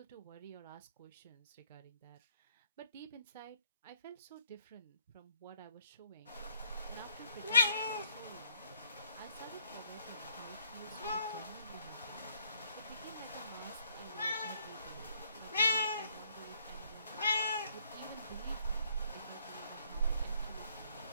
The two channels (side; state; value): both; inverted; correlation -0.61